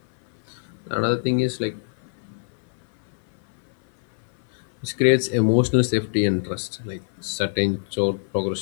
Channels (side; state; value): right; silent; 57 dB below the other